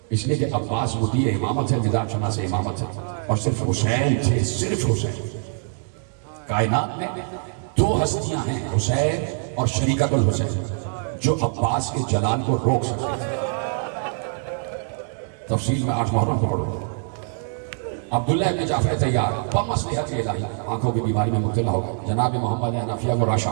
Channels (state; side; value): silent; left; digital silence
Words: اس لیے کہ عباس مطیع امامت ہے، نظام شناس امامت ہے، اور صرف حسین تھے، صرف حسین۔ کائنات میں دو ہستیاں ہیں، حسین اور شریکت الحسین، جو عباس کے جلال کو روک سکتے تھے۔ تفصیل میں 8 محرم کو پڑھو۔ عبداللہ ابن جعفر طیار بمصلحت الہی آنکھوں کی بیماری میں مبتلا ہو گئے، جناب محمد حنفیہ کو راشا